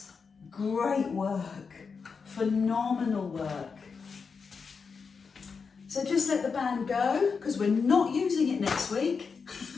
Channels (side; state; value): right; quieter; 5.4 dB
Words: Great work, phenomenal work. So just let the band go because we're not using it next week.